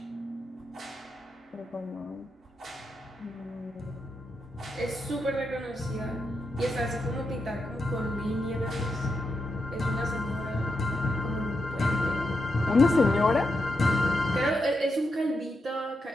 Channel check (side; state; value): both; normal; correlation 0.84